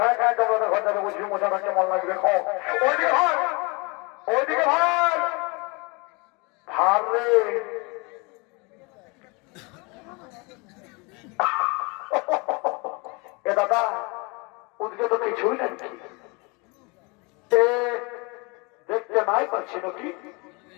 খায় তোমাদের ঘর যাবে, বুঝবি মশাটা কেমন লাগবে। খাও ওইদিকে ভাই, ওইদিকে ভাই ভার রে। এ দাদা ওদিকে তো কিছুই নাকি, দেখতে নাই পাচ্ছি নাকি?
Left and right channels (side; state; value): right; quieter; 29.0 dB